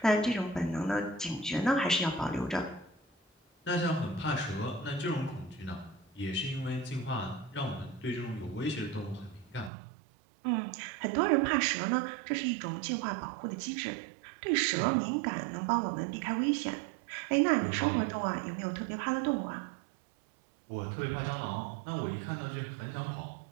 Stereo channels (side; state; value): left; drops out; at 9.7 s